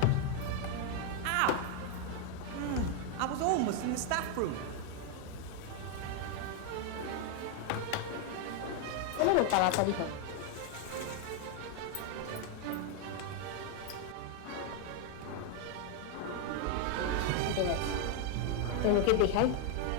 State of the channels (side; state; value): both; different; correlation 0.01